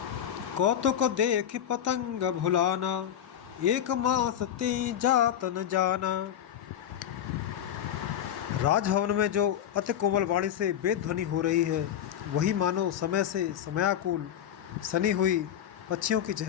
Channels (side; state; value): right; quieter; 10.1 dB